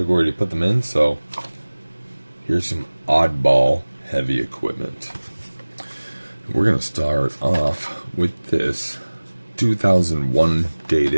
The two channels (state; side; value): inverted; both; correlation -1.00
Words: to put them in, so here's some oddball heavy equipment. We're going to start off with this 2001